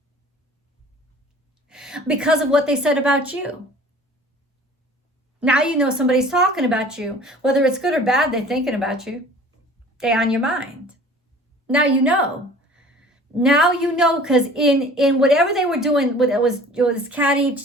because of what they said about you. Now you know somebody's talking about you. Whether it's good or bad, they're thinking about you. They're on your mind. Now you know. Now you know, because in whatever they were doing, it was catty,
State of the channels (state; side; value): normal; both; correlation 0.47